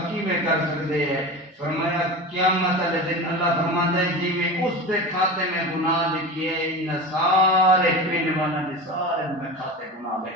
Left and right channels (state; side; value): normal; both; correlation 0.28